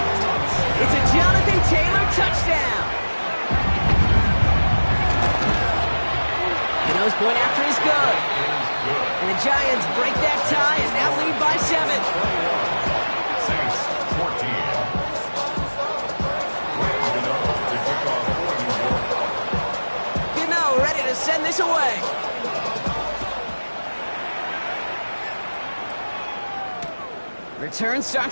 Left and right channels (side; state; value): both; inverted; correlation -1.00